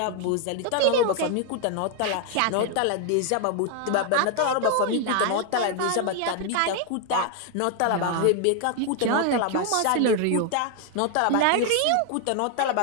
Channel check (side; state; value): both; different; correlation 0.00